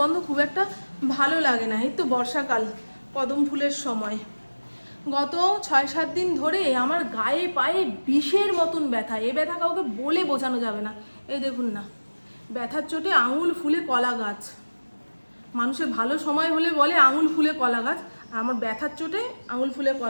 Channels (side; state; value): both; inverted; correlation -1.00